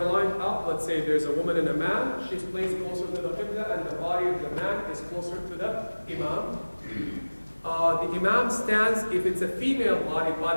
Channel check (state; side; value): inverted; both; correlation -1.00